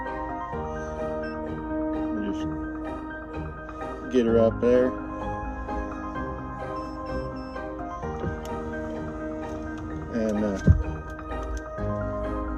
we'll just get her up there. And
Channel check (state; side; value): identical; both; correlation 1.00